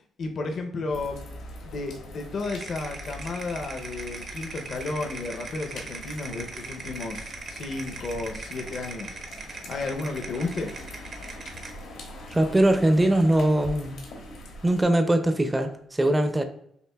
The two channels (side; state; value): both; normal; correlation 0.91